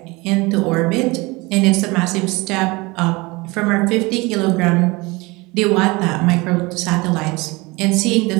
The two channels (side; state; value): left; quieter; 23.9 dB